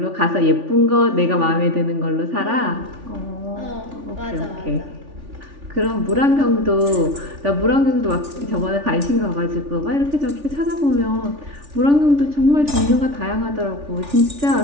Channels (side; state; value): left; late; 3.4 ms